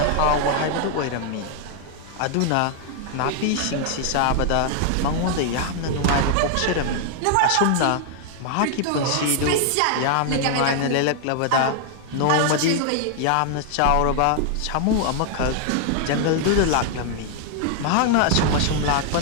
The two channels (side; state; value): both; different; correlation 0.00